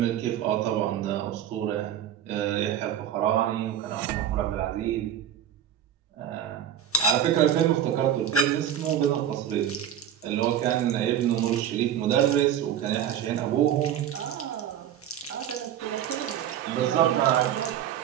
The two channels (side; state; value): left; quieter; 10.0 dB